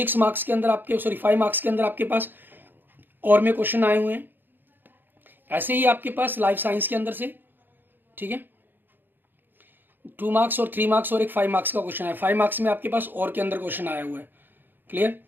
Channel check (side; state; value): left; late; 0.094 ms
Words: मार्क्स के अंदर आपके, 5 मार्क्स के अंदर आपके पास और में क्वेश्चन आए हुए हैं। ऐसे ही आपके पास लाइफ साइंस के अंदर से, ठीक है, 2 मार्क्स और 3 मार्क्स और एक 5 मार्क्स का क्वेश्चन है। 5 मार्क्स में आपके पास और के अंदर क्वेश्चन आया हुआ है, क्लियर।